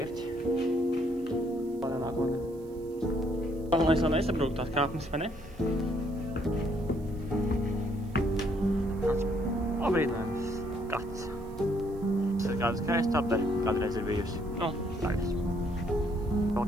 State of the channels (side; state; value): right; noise; hiss, 28 dB below the sound